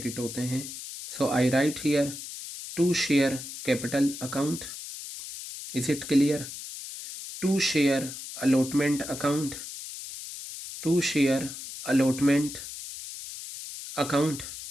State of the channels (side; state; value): left; noise; hiss, 10 dB below the sound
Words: होते हैं। So I write here to share capital account, is it clear? To share allotment account, to share allotment account